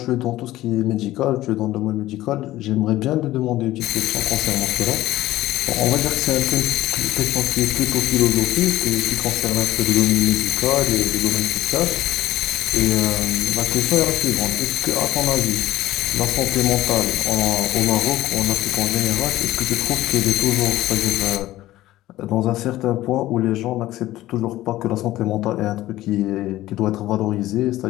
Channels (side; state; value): right; quieter; 15.7 dB